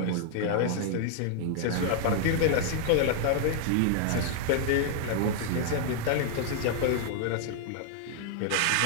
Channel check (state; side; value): different; both; correlation -0.01